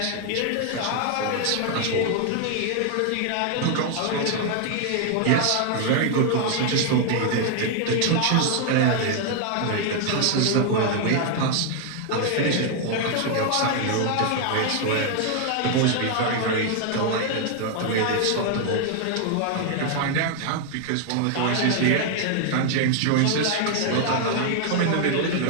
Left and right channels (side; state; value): both; different; correlation 0.00